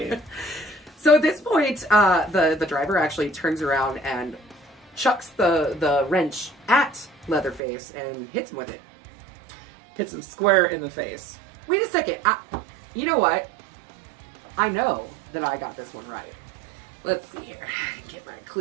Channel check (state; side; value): drops out; left; at 7.6 s